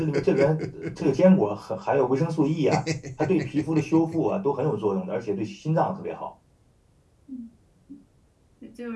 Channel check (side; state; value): both; identical; correlation 1.00